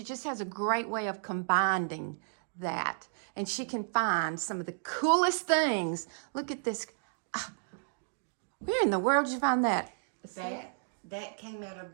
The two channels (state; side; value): silent; left; digital silence